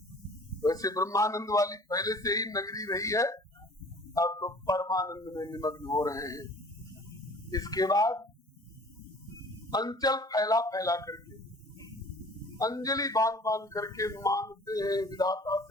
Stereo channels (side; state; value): both; normal; correlation 0.49